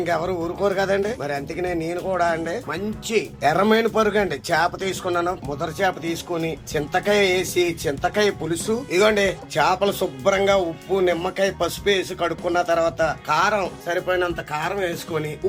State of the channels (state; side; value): identical; both; correlation 1.00